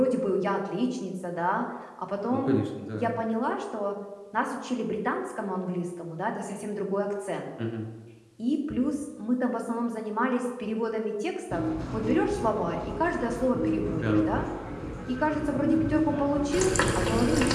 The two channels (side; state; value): both; identical; correlation 1.00